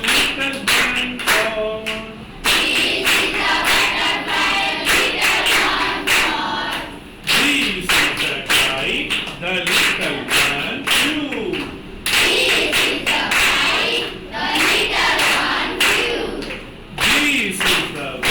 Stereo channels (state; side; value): identical; both; correlation 1.00